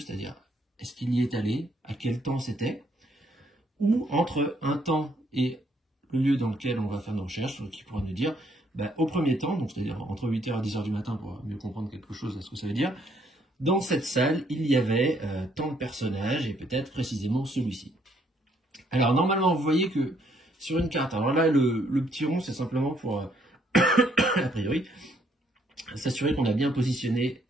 est-ce qu'il y est allé, à quel temps c'était, ou entre un temps et le lieu dans lequel on va faire nos recherches, qui pourra nous dire, au premier temps, donc c'est-à-dire entre 8h et 10h du matin pour mieux comprendre quelque chose à ce que ça veut dire, dans cette salle, il y avait tant de personnages, et peut-être précisément celui-ci. Alors normalement, vous voyez que sur une carte, alors là, le petit rond, c'est simplement pour, a priori, s'assurer qu'on a bien positionné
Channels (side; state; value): both; normal; correlation 0.69